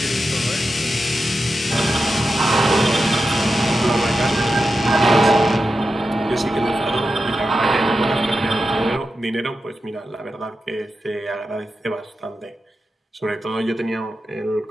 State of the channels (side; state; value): both; normal; correlation 0.90